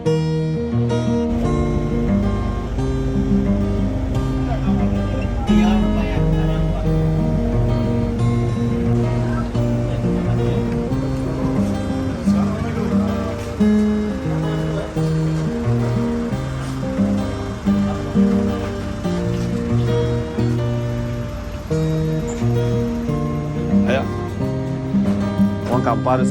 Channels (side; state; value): both; identical; correlation 1.00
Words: Ayo, uang kampar